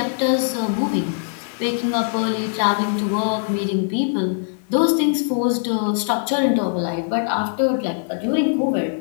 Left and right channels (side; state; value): right; silent; 56 dB below the other